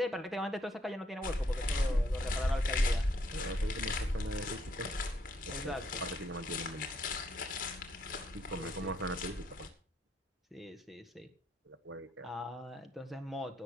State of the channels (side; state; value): both; normal; correlation 0.73